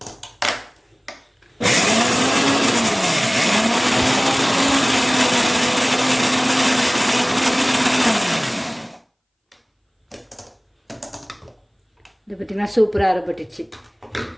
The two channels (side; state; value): both; identical; correlation 1.00